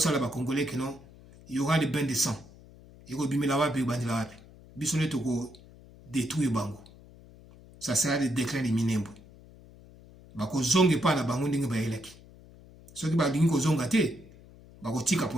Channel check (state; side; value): noise; left; hum, 22 dB below the sound